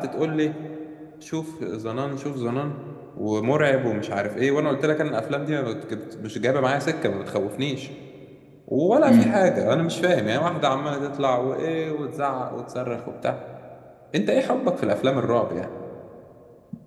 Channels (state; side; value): identical; both; correlation 1.00